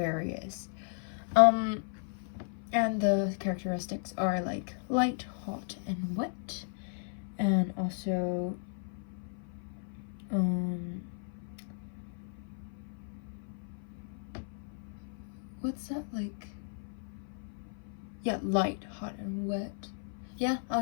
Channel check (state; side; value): silent; right; 54 dB below the other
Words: And the characteristics are light, hot, and wet, and also what's that yeah, light, hot, and wet. Yeah, I'll